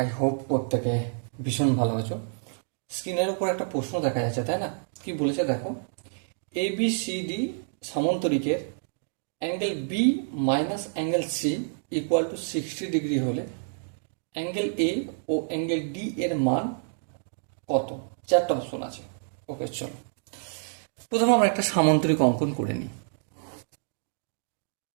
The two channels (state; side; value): silent; left; digital silence